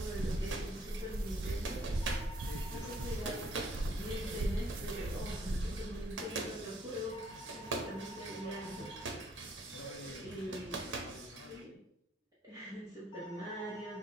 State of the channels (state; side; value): normal; both; correlation 0.65